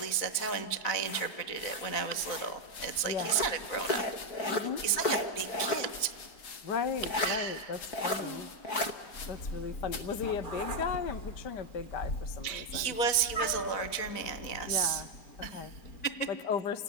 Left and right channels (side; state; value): right; late; 4.1 ms